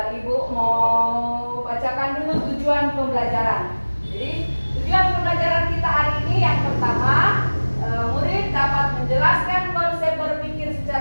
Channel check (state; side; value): inverted; both; correlation -1.00